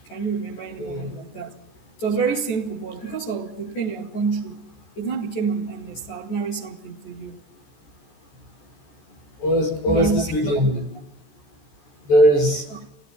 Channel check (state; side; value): late; right; 14 ms